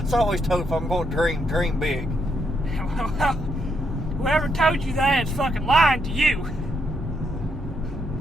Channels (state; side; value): normal; both; correlation 0.77